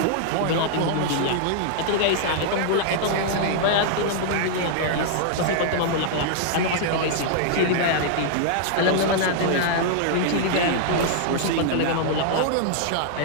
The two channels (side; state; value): both; different; correlation -0.01